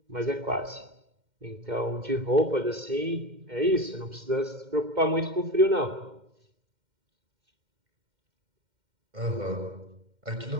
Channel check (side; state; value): left; late; 2.1 ms